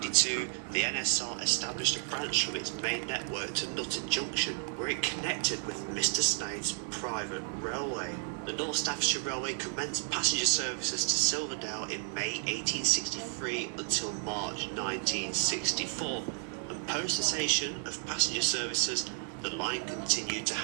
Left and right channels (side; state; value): left; silent; 56 dB below the other